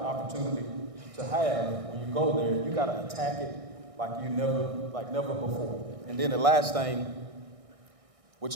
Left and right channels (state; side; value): late; left; 1.6 ms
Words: opportunity to have when you go there. You got to attack it like never before. And then the last thing,